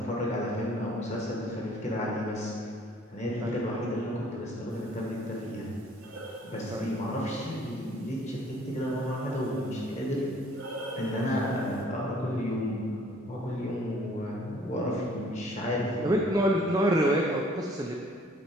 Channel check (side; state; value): both; normal; correlation 0.58